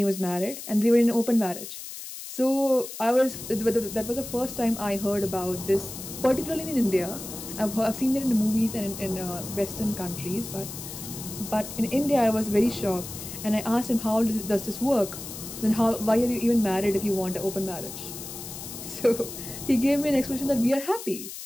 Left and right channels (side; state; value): left; noise; hiss, 10 dB below the sound